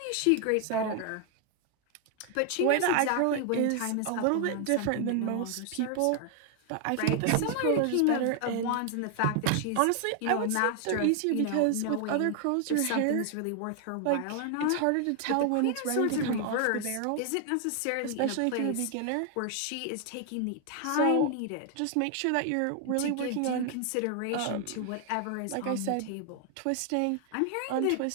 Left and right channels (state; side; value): different; both; correlation 0.00